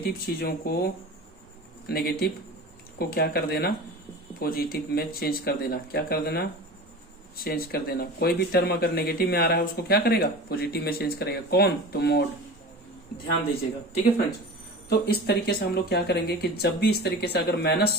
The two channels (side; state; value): both; normal; correlation 0.34